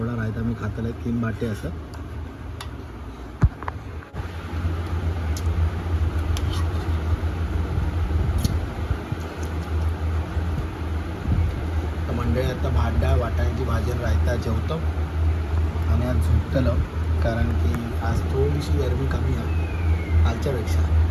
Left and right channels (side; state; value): both; identical; correlation 1.00